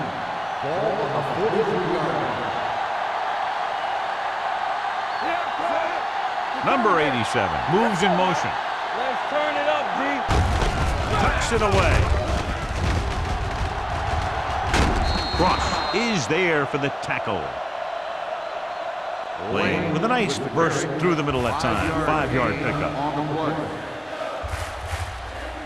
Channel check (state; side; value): identical; both; correlation 1.00